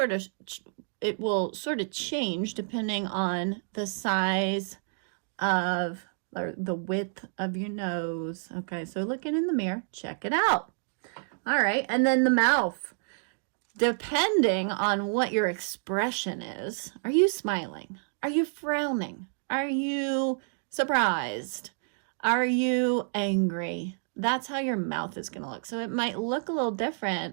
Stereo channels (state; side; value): silent; left; digital silence